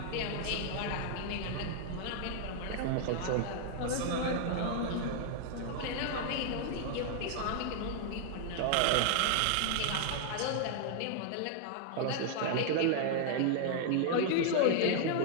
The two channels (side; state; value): both; different; correlation 0.00